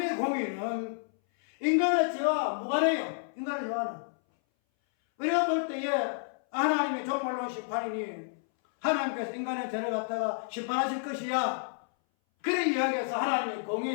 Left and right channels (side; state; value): right; silent; 58 dB below the other